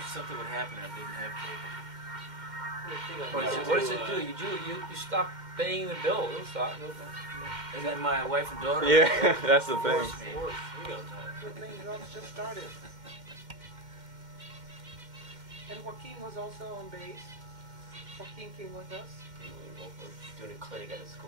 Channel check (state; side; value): late; left; 2.1 ms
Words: would happen. I didn't have cable. What does it do? You stop paying the bill. It'll stop. And then my wife and daughter. Yeah, that's the thing. The thing just started. And Joaquin was also on bass. Joaquin came with us. We're doing a clinic at a